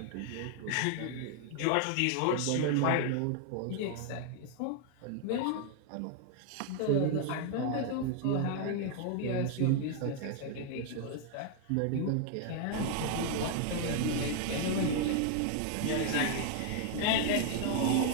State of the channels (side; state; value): both; different; correlation 0.00